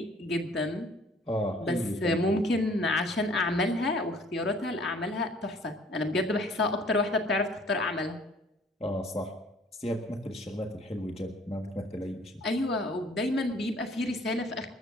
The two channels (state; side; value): normal; both; correlation 0.56